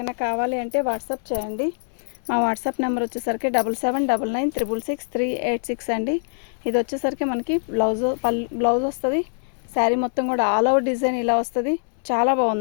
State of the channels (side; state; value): right; silent; digital silence